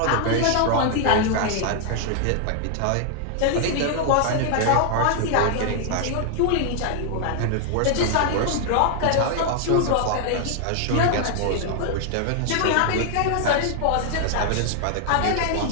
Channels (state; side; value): different; both; correlation 0.00